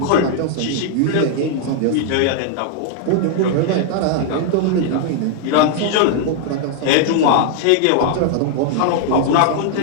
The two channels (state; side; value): different; both; correlation 0.00